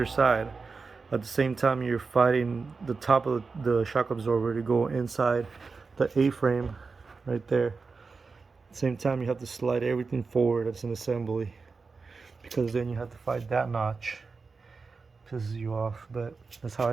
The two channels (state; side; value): quieter; left; 4.5 dB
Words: side. At the same time you're fighting the top of the shock absorber to go inside the A-frame right there. At the same time you have to slide everything forward that's an assembly, because then you have to fight that notch. Pisses you off, but that's how